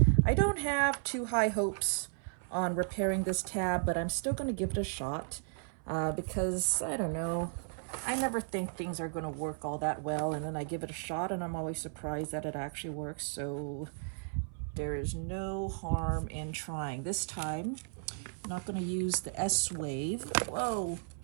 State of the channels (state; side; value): silent; left; 55 dB below the other